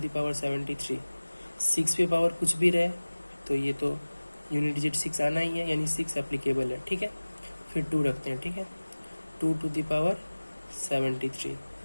पावर 73, 6 पे पावर कुछ भी रहे तो ये तो यूनिट डिजिट 6 आना ही है, यानी 6 एप्लीकेबल है, ठीक है। फिर 2 रखते हैं, ठीक है, 2 टू द पावर 73।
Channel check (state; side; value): inverted; both; correlation -1.00